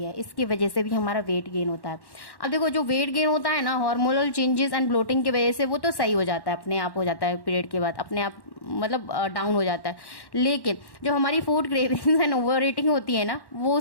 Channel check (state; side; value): late; right; 1.1 ms